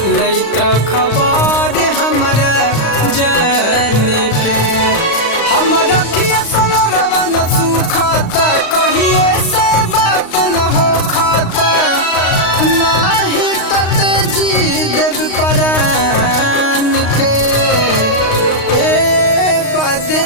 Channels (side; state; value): right; late; 35 ms